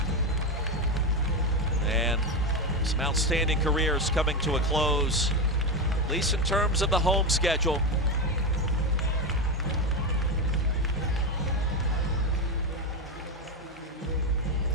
and some outstanding careers coming to a close, at least in terms of the home schedule.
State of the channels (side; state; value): both; normal; correlation 0.13